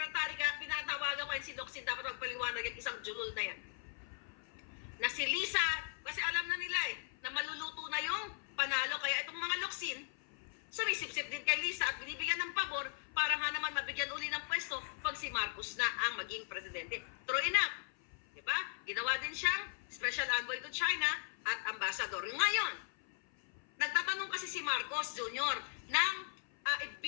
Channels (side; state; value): right; silent; 52 dB below the other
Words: Kaya pinatawagan ko si Locsin, dapat magpaliwanag yung isang julul na yan. Na si Lisa, kasi alam na nila na maluluto na yung panalo. Kaya itong mga Locsin, sumisip-sip din kay Lisa at binibigyan ng pabor para nga naman mabigyan uli ng pwesto pag si Marcos na ang maging presidente. True enough. Diba? Ginawa din siyang special envoy to China at ambassador. Ngayon, nagtatanong kasi si Marcos Jr. ng